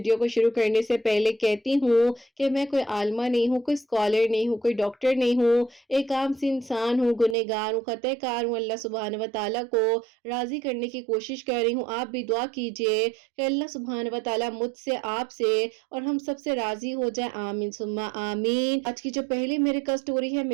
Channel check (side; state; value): left; drops out; at 7.4 s